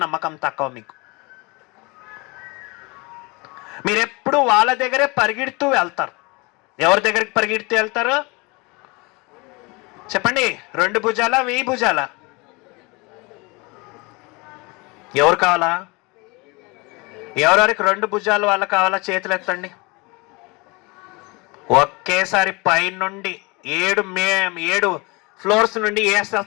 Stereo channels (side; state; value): right; quieter; 26.8 dB